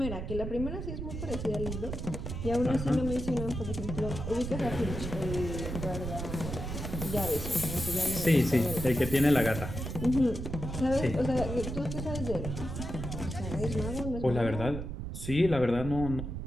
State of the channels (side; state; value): right; noise; rumble, 5 dB below the sound